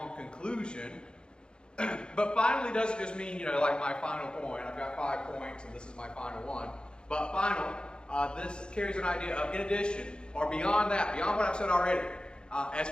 conclusion. But finally doesn't just mean, like my final point. I've got 5 points and this is my final one. But final, this carries an idea of in addition, or beyond that, beyond what I've said already, as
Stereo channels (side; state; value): right; late; 0.051 ms